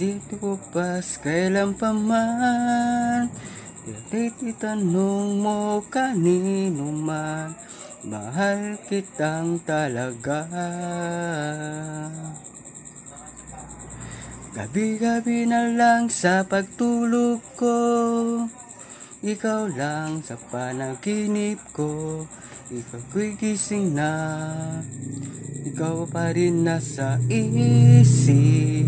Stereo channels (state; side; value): identical; both; correlation 1.00